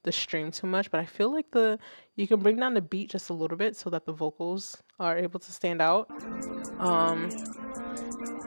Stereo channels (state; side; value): inverted; both; correlation -1.00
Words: the stream too much, but I feel like you can bring down the beat just a little bit so that the vocals are able to stand out.